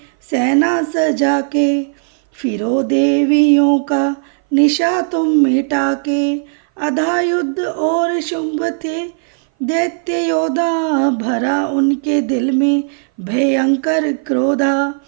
सेना सजा के, फिरो देवियों का निशा तुम मिटा के। अधा युद्ध और शुंभ थे दैत्य योद्धा, भरा उनके दिल में भयंकर क्रोधा।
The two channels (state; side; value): silent; left; 59 dB below the other